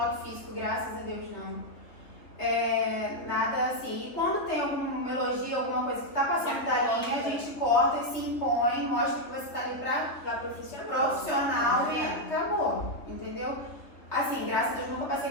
físico, graças a Deus, não. Nada assim. E quando tem algum elogio, alguma coisa que está passando da linha, a gente corta e se impõe, mostra que você está ali para profissional e acabou, entendeu? Assim, graças a Deus nunca passei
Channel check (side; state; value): right; late; 3.1 ms